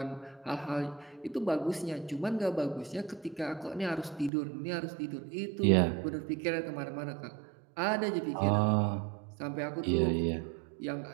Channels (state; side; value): drops out; left; at 4.3 s